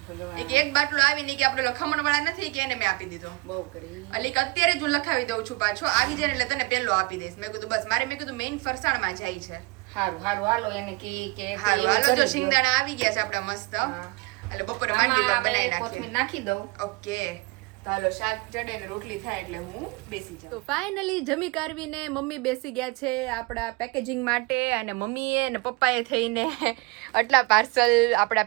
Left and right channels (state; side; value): quieter; left; 25.1 dB